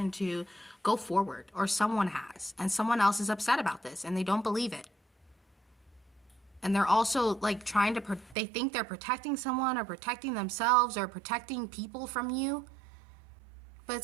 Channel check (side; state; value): left; drops out; at 8.3 s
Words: to go forward, or someone has. And someone else is upset about this, and they don't believe it. And they're also like they think they're protecting someone, or protecting themselves, or protecting people from you. But